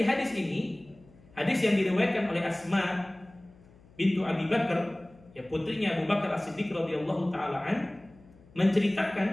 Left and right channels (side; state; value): left; noise; hum, 26 dB below the sound